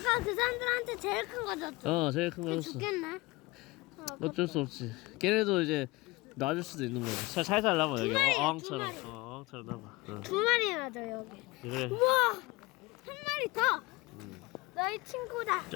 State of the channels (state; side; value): quieter; right; 22.4 dB